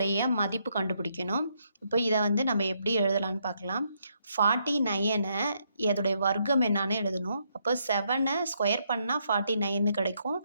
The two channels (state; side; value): inverted; both; correlation -0.75